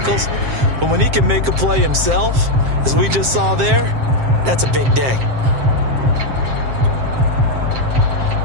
But when he can make a play himself, as we just saw there, that's a big day.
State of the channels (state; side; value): late; left; 7.6 ms